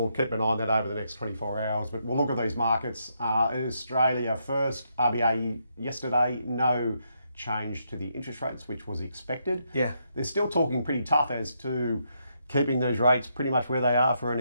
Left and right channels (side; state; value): both; inverted; correlation -0.78